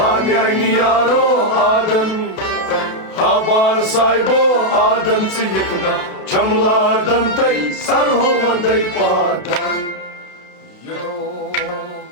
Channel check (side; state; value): right; late; 32 ms